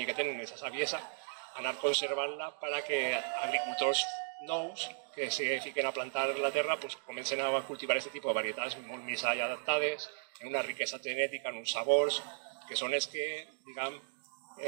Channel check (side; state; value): left; silent; digital silence